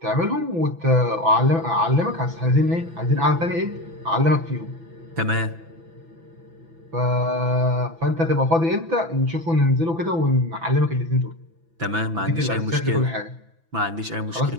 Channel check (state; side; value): late; left; 6.0 ms